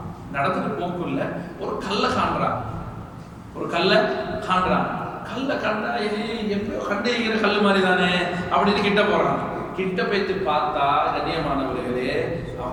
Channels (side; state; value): both; identical; correlation 1.00